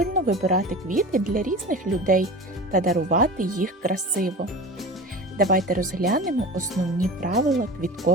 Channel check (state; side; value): normal; both; correlation 0.34